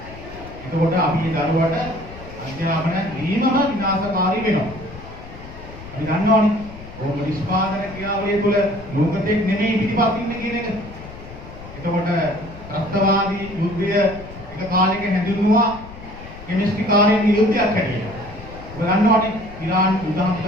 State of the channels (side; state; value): left; noise; rumble, 15 dB below the sound